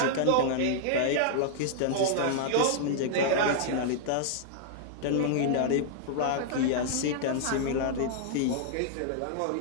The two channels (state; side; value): different; both; correlation -0.01